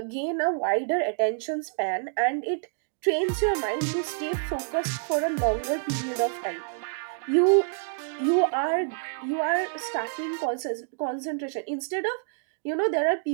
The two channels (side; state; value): left; silent; digital silence